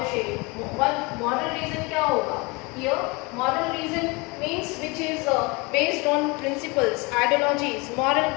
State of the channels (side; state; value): right; quieter; 26.8 dB